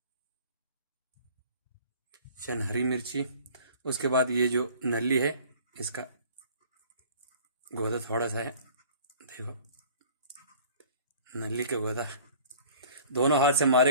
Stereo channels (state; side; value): inverted; both; correlation -0.49